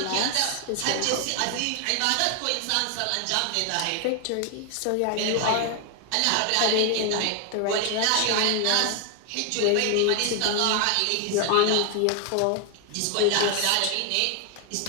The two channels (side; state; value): both; different; correlation 0.01